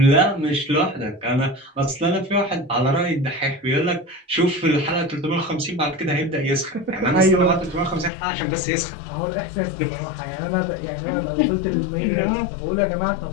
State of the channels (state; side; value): drops out; right; at 8.1 s